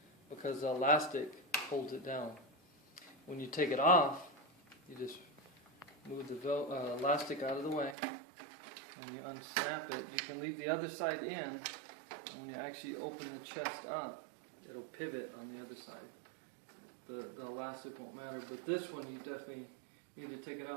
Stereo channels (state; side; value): drops out; left; at 8.0 s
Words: because the elastic holds it down. When you take it off, you just move the elastic out of the way, and you unsnap it. You can leave the other side in, and when you actually open the chest up, it'll pivot on the other side. The elastic won't matter, but this one you definitely need to take it